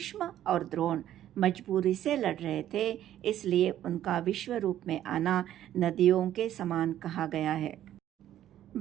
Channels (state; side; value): quieter; left; 12.0 dB